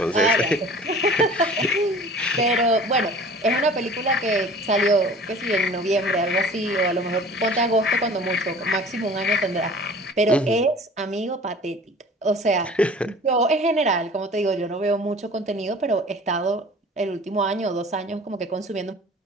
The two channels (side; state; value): both; normal; correlation 0.45